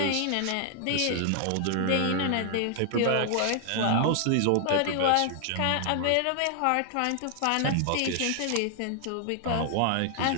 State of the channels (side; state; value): both; different; correlation 0.00